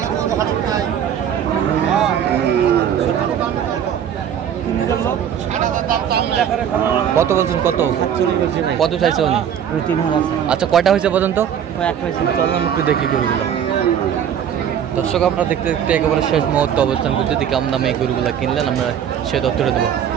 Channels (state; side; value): quieter; left; 9.0 dB